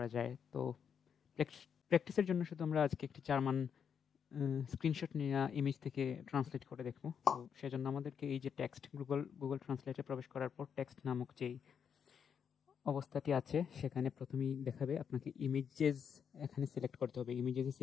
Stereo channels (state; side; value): quieter; right; 7.4 dB